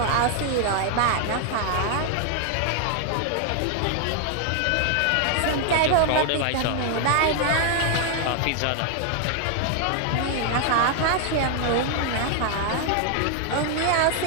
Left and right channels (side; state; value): both; different; correlation 0.00